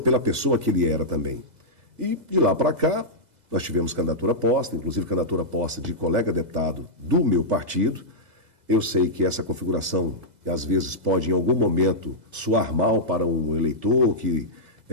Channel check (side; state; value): left; late; 2.0 ms